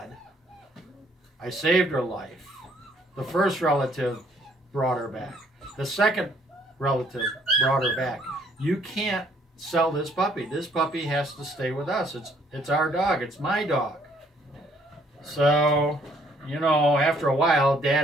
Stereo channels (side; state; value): both; normal; correlation 0.65